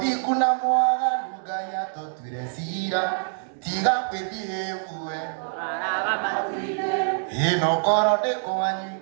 na mwaganu Ngai atũtuire cira. Tiga kwĩthiĩ bue. Ino koro ndĩ kwanyu.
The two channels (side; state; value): left; silent; digital silence